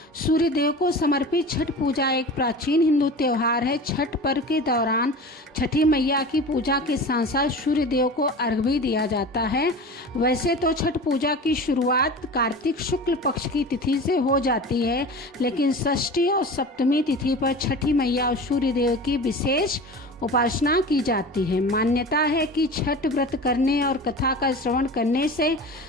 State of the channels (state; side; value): normal; both; correlation 0.34